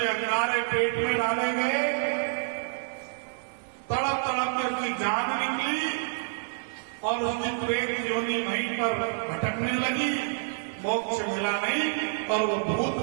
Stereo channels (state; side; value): silent; left; digital silence